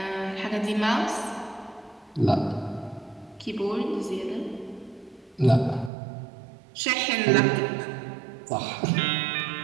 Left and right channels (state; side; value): drops out; left; at 5.9 s